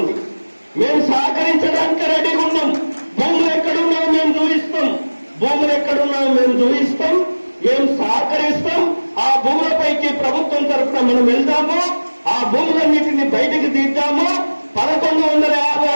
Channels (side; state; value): both; inverted; correlation -1.00